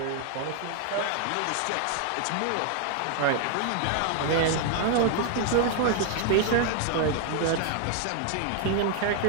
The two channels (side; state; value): both; different; correlation 0.01